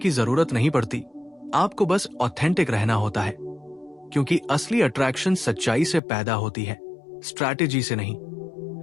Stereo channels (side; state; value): right; drops out; at 6.0 s